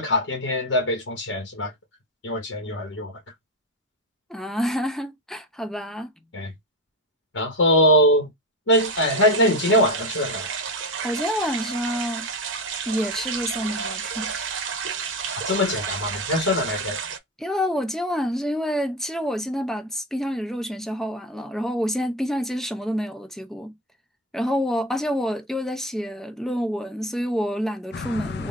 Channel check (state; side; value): normal; both; correlation 0.18